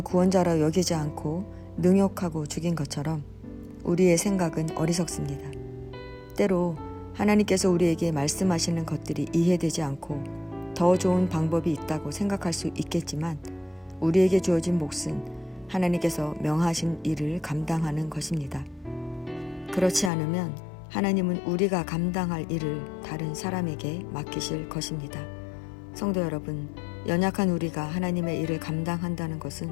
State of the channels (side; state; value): right; drops out; at 20.1 s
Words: 구원자라 여기지 않고 능욕하고 죽인 것처럼 우리의 생각은 어리석습니다. 때로 하나님께서 우리에게 말씀하시는 것들이 이해되지 않고 더 좋은 방법이 있다고 생각할 수 있겠지만 우리에게 주어진 몫은 하나님께서 명하신 일을 감당하는 것입니다. 그렇지 않으면 하나님은 우리가 감당할 일을 다른 사람에게 맡기실 것입니다. 성도 여러분, 연약한 우리가 하나님의 일을 감당한다는